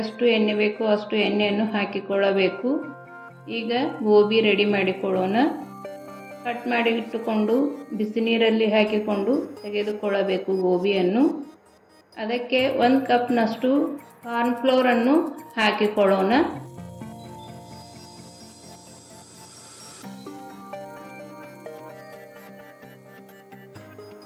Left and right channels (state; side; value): identical; both; correlation 1.00